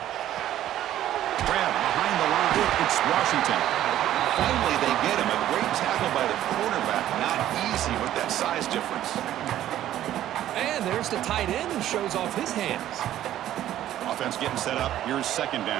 Grab behind the line. It's Washington. Finally, they get him. A great tackle by the cornerback. Not easy with that size difference. And there's the tight end who shows off his hands. Offense getting set up. Here's 2nd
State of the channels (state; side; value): quieter; left; 12.5 dB